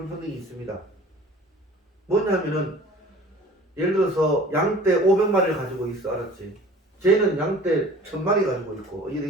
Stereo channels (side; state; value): both; normal; correlation 0.46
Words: 있습니다. 뭐냐면은 예를 들어서 양떼 500마리를 가지고 있어. 알았지? 쟤는 양떼 1000마리 가지고 있고